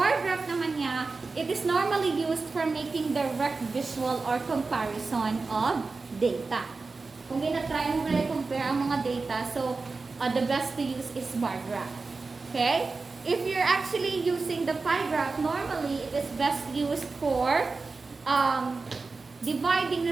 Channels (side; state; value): left; quieter; 4.0 dB